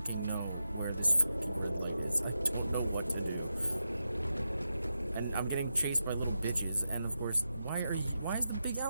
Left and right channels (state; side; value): inverted; both; correlation -0.89